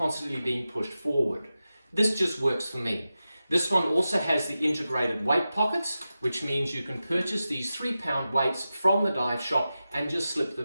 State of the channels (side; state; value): both; inverted; correlation -0.93